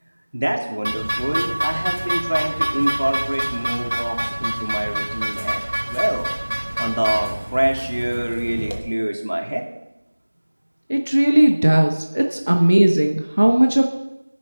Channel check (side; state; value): both; inverted; correlation -1.00